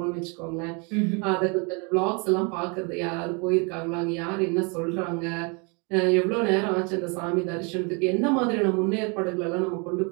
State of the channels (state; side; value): quieter; left; 32.9 dB